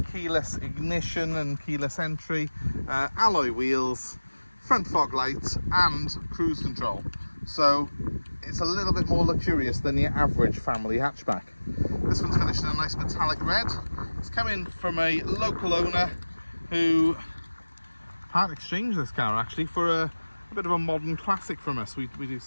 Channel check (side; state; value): both; inverted; correlation -1.00